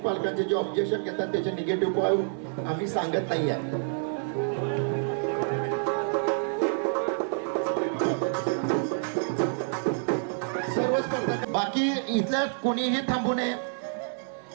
जे ऑब्जेक्शन घेतात त्याचे निगेटिव्ह पॉइंट आम्ही सांगत नाही आहे. सर्व स्पर्धक बाकी इथल्या कोणीही थांबू नये.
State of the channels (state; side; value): silent; left; digital silence